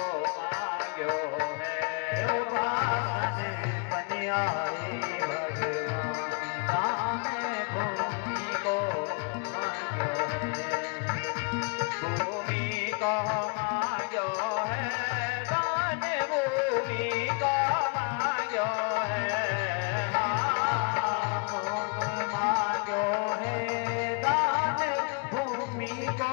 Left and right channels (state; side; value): quieter; right; 34.3 dB